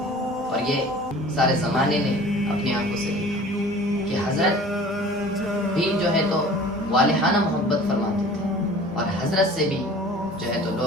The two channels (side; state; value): both; normal; correlation 0.45